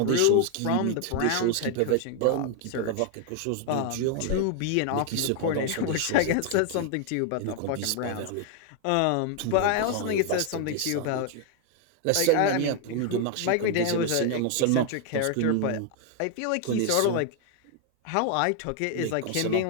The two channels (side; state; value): both; different; correlation 0.01